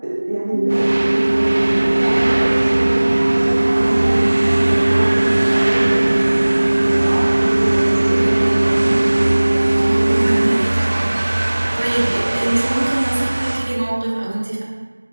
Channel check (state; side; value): inverted; both; correlation -1.00